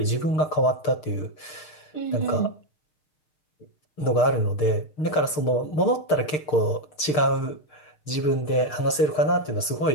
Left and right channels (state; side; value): late; right; 6.6 ms